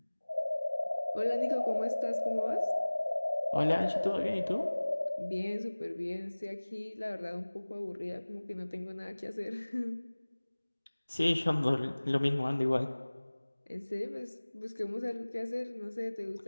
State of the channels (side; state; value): both; inverted; correlation -1.00